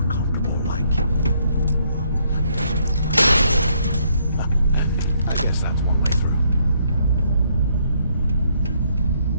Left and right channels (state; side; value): inverted; both; correlation -0.70